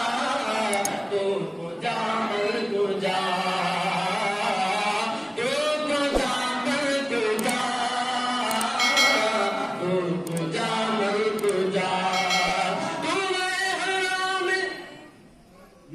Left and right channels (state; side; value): identical; both; correlation 1.00